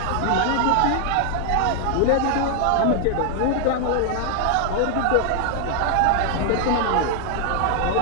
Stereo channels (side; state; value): both; different; correlation 0.00